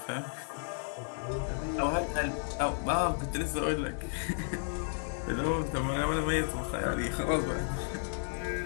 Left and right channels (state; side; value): silent; right; 56 dB below the other